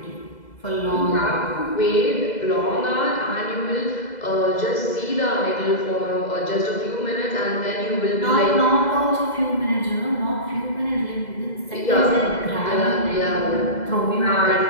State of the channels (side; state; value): right; late; 2.0 ms